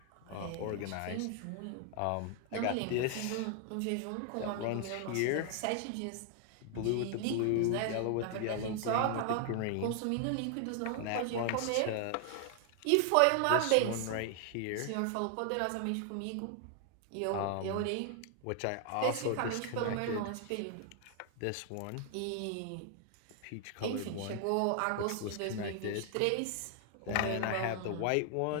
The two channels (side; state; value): both; different; correlation 0.00